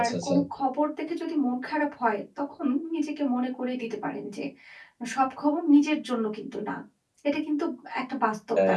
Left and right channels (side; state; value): both; identical; correlation 1.00